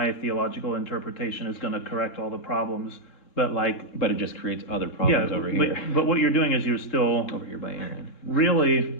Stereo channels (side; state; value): right; late; 3.7 ms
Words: theological interpretation is going to correct all the problems, but like, But it just creates other yeah, problems over here. but what you're doing is you're still Over here by Aaron.